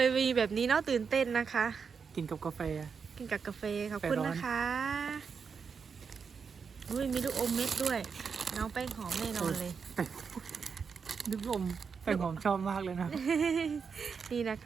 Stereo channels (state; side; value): quieter; left; 5.9 dB